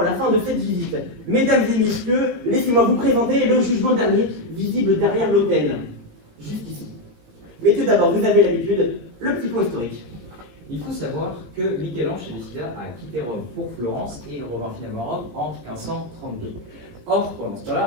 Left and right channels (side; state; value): left; late; 17 ms